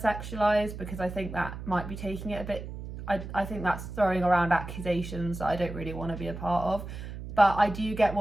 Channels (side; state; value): right; noise; hum, 9 dB below the sound